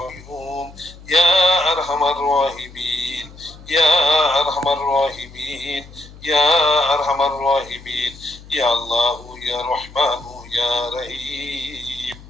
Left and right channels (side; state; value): left; noise; hum, 19 dB below the sound